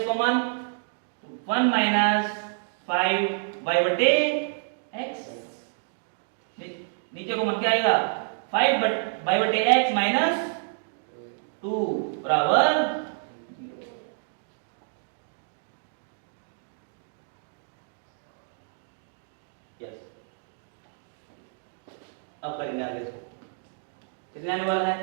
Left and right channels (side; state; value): left; silent; digital silence